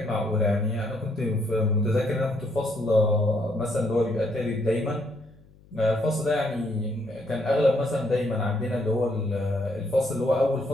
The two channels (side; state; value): left; noise; hum, 27 dB below the sound